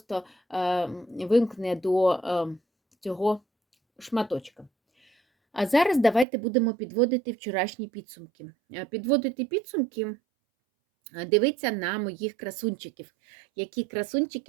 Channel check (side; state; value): left; drops out; at 6.2 s